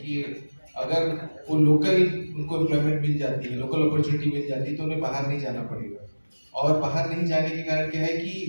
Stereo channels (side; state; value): both; inverted; correlation -1.00